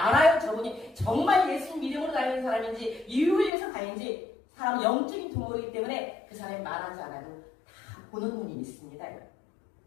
저분이 정말 예수님 믿음으로 다니는 사람인지 이익을 위해서 다니는지 사람은 영적인 두모이기 때문에 그 사람이 말하지 않아도 다 보는 눈이 있습니다.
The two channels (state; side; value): drops out; right; at 3.5 s